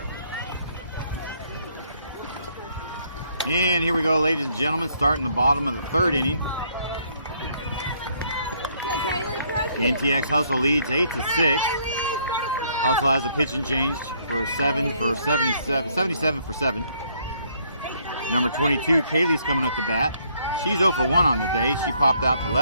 And here we go, ladies and gentlemen, starting the bottom of the 3rd inning. NTX Hustle leads 8-6. Hustle has a pitch and change for 77 for 7. Number 22, Kaylee's coming up to bat. She's 0 for 1 on the day. She popped out to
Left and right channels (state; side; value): inverted; both; correlation -0.67